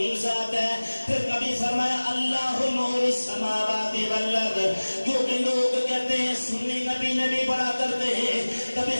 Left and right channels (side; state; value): both; inverted; correlation -1.00